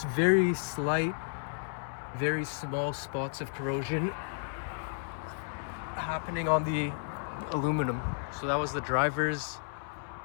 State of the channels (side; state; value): right; silent; 56 dB below the other